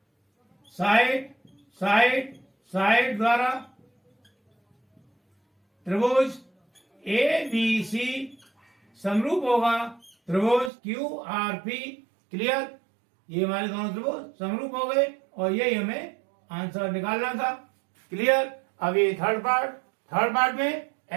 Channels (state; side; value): drops out; left; at 10.7 s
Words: साइड साइड द्वारा त्रिभुज ए बी सी समरूप होगा त्रिभुज क्यू आर पी। क्लियर, ये हमारे दोनों त्रिभुज समरूप हो गए और यही हमें आंसर निकालना था। क्लियर, अब ये थर्ड पार्ट में